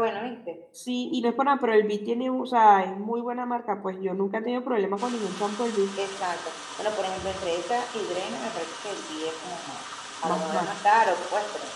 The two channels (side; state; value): both; identical; correlation 1.00